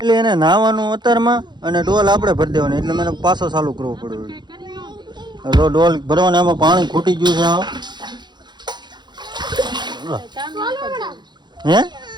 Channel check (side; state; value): left; late; 0.21 ms